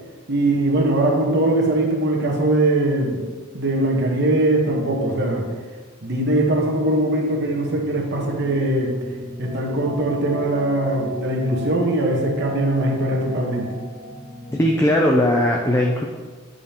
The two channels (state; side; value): normal; both; correlation 0.33